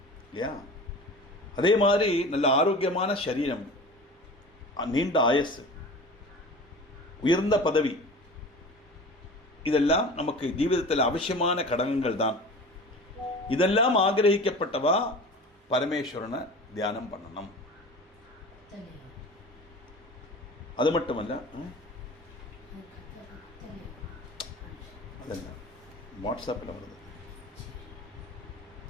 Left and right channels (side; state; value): both; normal; correlation 0.37